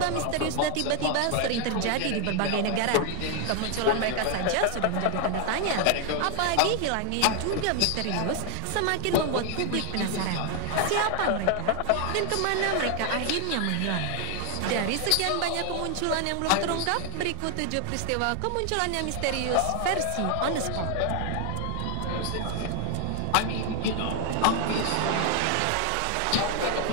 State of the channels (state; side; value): different; both; correlation 0.00